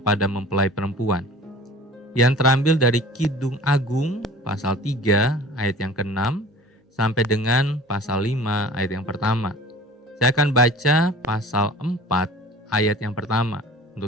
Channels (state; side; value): normal; both; correlation 0.43